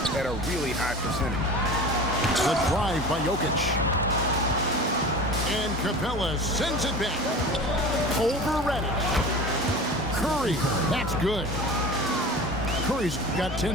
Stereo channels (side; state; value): both; normal; correlation 0.35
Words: at a really high percentage. The drive by Jokic. And Capella sends it back. Over Reddish. Curry. That's good. Curry's got